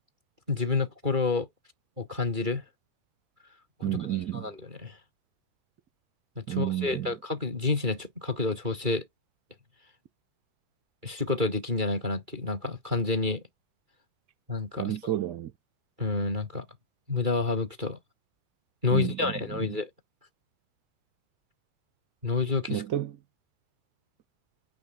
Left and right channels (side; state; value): left; late; 2.3 ms